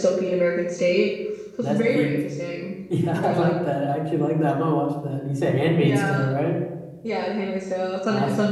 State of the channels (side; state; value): both; identical; correlation 1.00